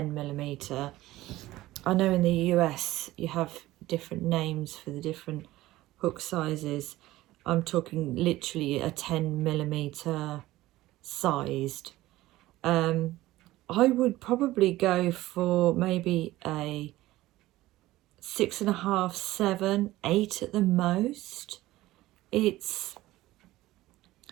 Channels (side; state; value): left; quieter; 16.9 dB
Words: millimeter. I know in the US you have different names for the different hook sizes. I'm talking literally a 10 millimeter sized. I would probably go for maybe a 6.5, 7, 8 at the most. It's